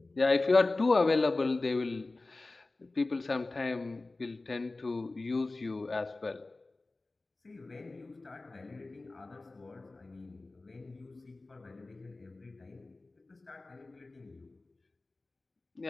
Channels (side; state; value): right; quieter; 3.2 dB